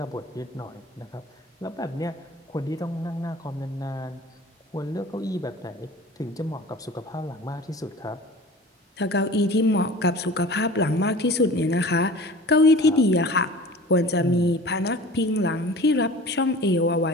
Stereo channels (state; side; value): normal; both; correlation 0.41